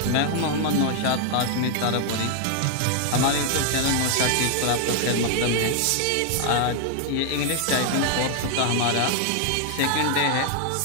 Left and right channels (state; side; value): different; both; correlation 0.00